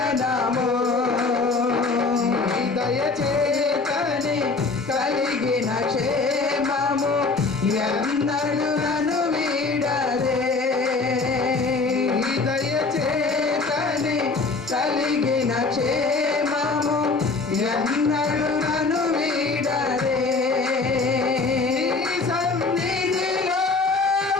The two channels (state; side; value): quieter; right; 4.0 dB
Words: దయచేతని కలిగిన క్షేమము ఎన్నడు నన్ను వీడదే. దయచేతని కలిగిన క్షేమము ఎన్నడు నన్ను వీడదే. నీ సన్నిధిలో